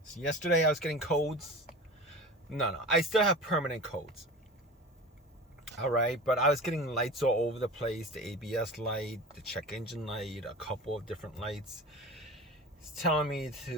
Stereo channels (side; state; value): both; normal; correlation 0.33